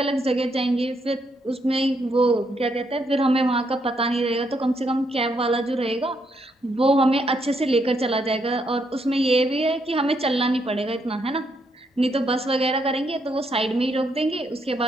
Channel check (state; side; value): normal; both; correlation 0.76